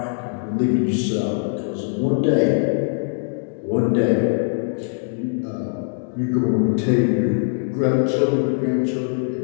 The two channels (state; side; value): silent; right; digital silence